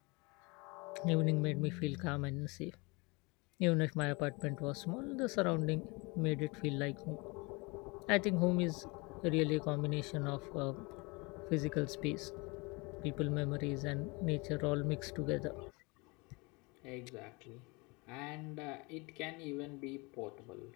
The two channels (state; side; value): quieter; right; 27.3 dB